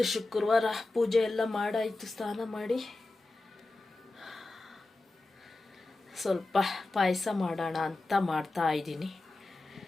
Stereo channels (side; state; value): right; quieter; 3.1 dB